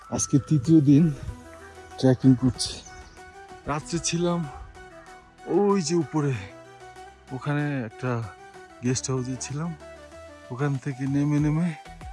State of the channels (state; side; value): identical; both; correlation 1.00